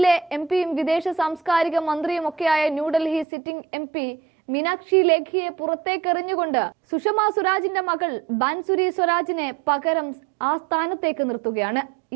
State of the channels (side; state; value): left; drops out; at 3.2 s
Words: എംപിയും വിദേശ സാംസ്കാരിക മന്ത്രിയും ഒക്കെയായ ന്യൂഡൽഹി സിറ്റിംഗ് എംപി മീനാക്ഷി ലേഖിയെ പുറത്തേക്കെറിഞ്ഞുകൊണ്ട് സുഷമ സ്വരാജിന്റെ മകൾ ബാൻസുരി സ്വരാജിനെ പകരം ആ സ്ഥാനത്തേക്ക് നിർത്തുകയാണ്.